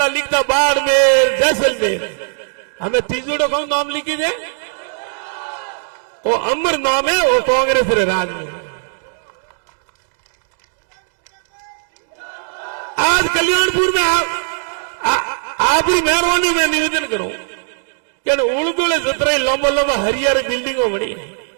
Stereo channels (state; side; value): silent; left; digital silence